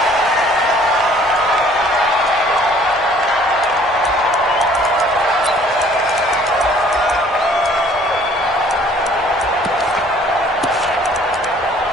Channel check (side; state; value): both; normal; correlation 0.56